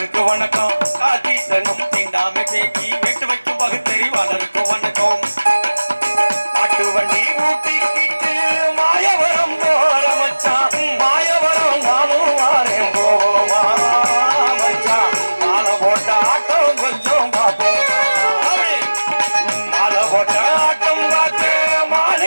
வணக்கம். கொட்டா தீட்டனும் தீண்டாமை பேக்கி வெட்டு வைக்கும் பகுத்தறிவாளருக்கு வணக்கம். மாட்டு வண்டி ஊட்டிக்கிட்டு மாயவரம் போற மச்சான், மாயவரம் நானும் வாரேன் போவோமா மச்சான். மாலை போட்ட ஆட்டம் கொஞ்சம் பார்ப்போம், மாலை போட்ட ஆட்டம் பார்த்து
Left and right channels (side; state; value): both; inverted; correlation -1.00